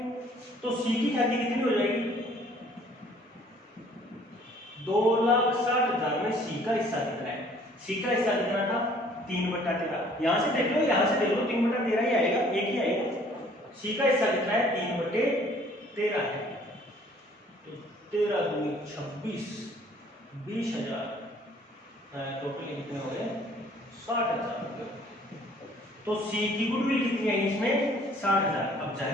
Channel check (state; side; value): normal; both; correlation 0.57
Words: तो सी की ख्याति कितनी हो जाएगी? 2,60,000 में सी का हिस्सा कितना है? सी का हिस्सा कितना था? 3/13। यहां से देख लो, यहां से देख लो, 3/13 ही आएगा, एक ही आएगा। सी का हिस्सा कितना है? 3/13 है। तो 13 दूनी 26, 20,000, टोटल कितने हो गए? 60,000। तो सी की गुडविल कितनी है इसमें? 60,000। अब